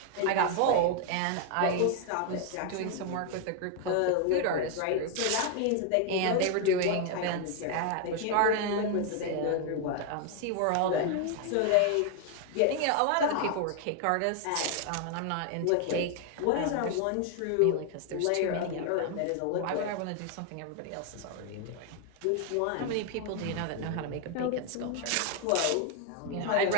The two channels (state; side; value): different; both; correlation 0.00